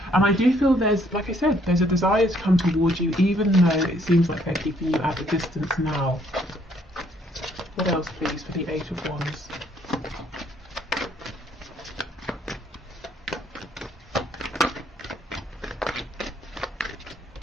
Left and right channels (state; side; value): normal; both; correlation 0.66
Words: I do feel there's, like I said, there's a desire to come towards you, even though it seems like they're keeping you at a distance now. What else, please, for the Eight of Wands?